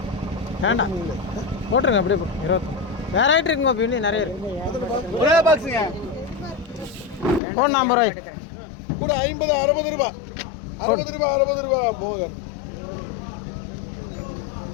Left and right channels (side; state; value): right; drops out; at 7.4 s